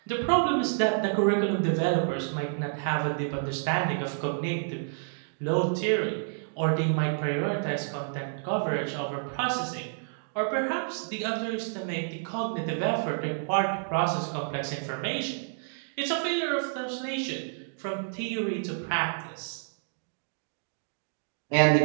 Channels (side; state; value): left; silent; digital silence